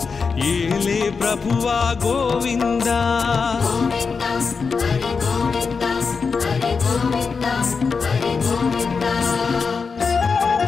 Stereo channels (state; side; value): quieter; right; 5.1 dB